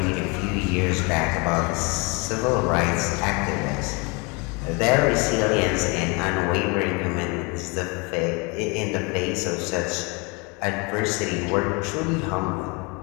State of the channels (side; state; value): right; quieter; 29.6 dB